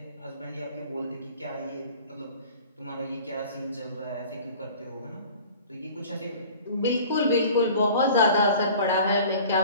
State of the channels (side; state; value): both; inverted; correlation -0.44